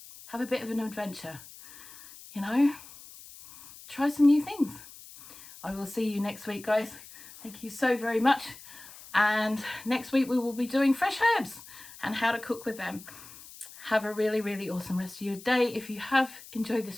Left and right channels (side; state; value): left; noise; hiss, 18 dB below the sound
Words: Have a bit of an adventure, you know, try some new things. I will see you next week, guys. Thank you so very much. And next week we will be doing fresh herbs and how to cook with them. Have a really, really awesome rest of your day. If you have enjoyed